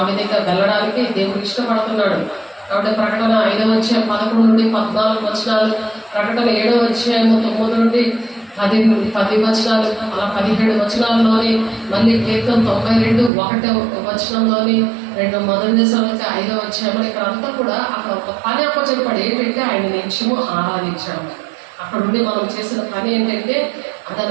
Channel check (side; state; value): left; drops out; at 13.3 s